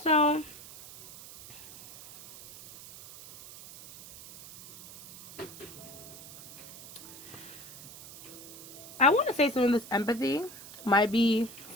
I want to say some of this empathy might be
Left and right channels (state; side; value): noise; right; hiss, 16 dB below the sound